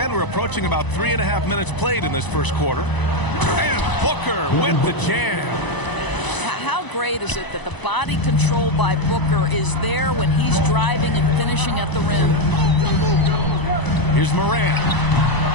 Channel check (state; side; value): late; right; 1.0 ms